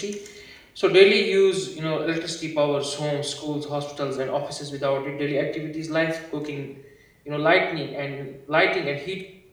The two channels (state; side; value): identical; both; correlation 1.00